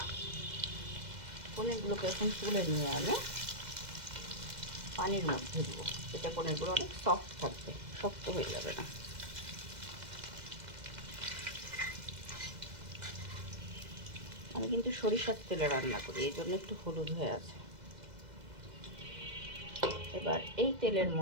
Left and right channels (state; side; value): late; left; 2.0 ms